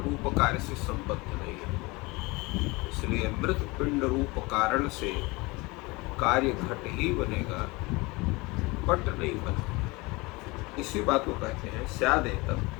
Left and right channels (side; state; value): right; quieter; 24.3 dB